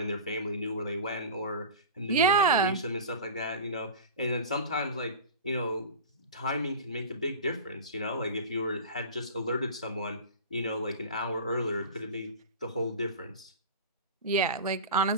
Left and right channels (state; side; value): inverted; both; correlation -0.32